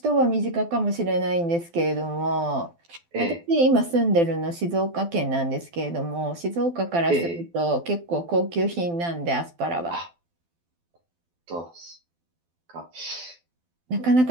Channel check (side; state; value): left; late; 12 ms